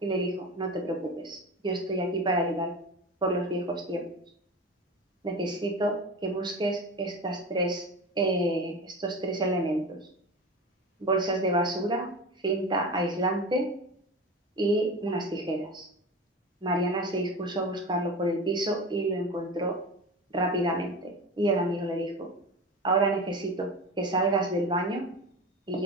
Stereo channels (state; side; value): normal; both; correlation 0.29